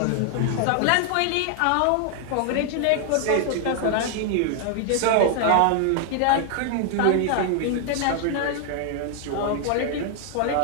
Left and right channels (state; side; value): different; both; correlation 0.00